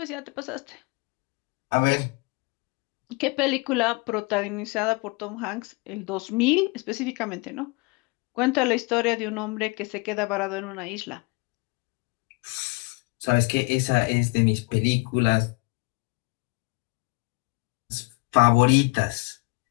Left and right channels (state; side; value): quieter; right; 27.2 dB